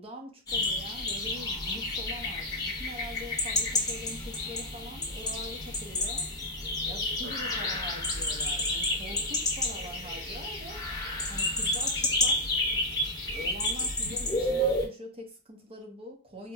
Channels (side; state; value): both; normal; correlation -0.04